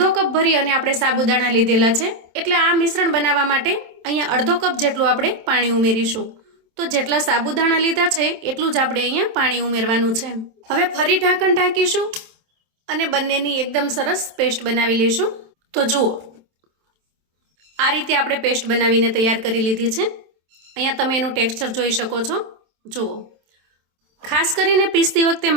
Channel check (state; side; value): late; left; 27 ms